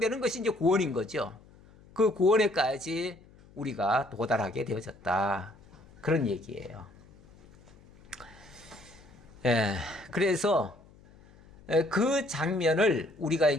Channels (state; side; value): noise; left; hum, 25 dB below the sound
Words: 것이 이제 구원인 거죠. 그 구원에까지 우리가 도달하게 되어졌다. 그런 얘기예요. 예, 그래서 그 장면을 우리가